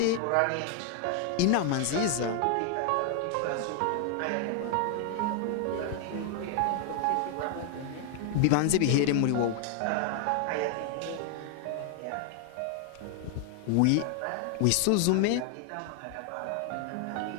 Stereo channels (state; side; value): different; both; correlation 0.00